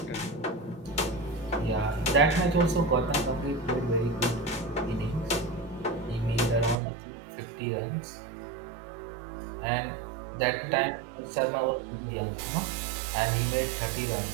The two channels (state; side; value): drops out; left; at 6.8 s